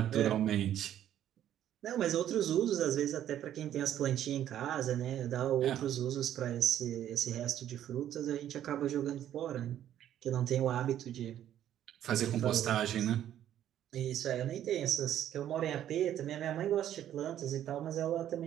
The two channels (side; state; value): left; quieter; 11.2 dB